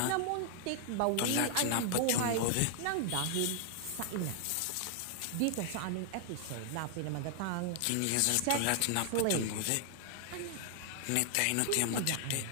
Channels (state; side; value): different; both; correlation 0.00